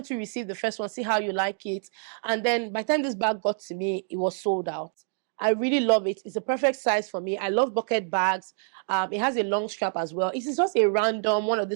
you receive the first one, see how you like it? And then by the time this bag got to me, it was sold out. I really love it. It's a perfect size for me. I love bucket bags. It has a long strap as well. It is just one of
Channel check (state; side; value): silent; left; 60 dB below the other